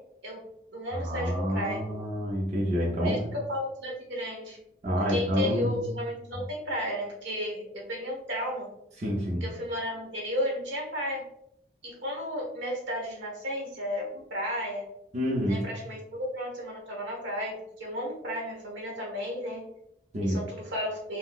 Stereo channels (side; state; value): both; normal; correlation 0.40